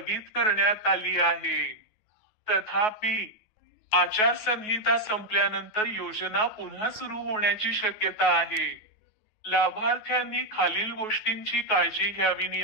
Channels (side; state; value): right; late; 9.3 ms